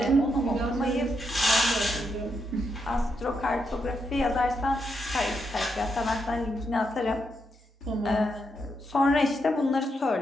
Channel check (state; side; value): normal; both; correlation 0.81